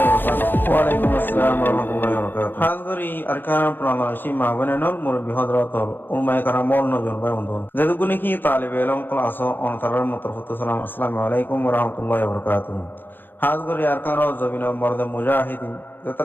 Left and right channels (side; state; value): right; late; 0.094 ms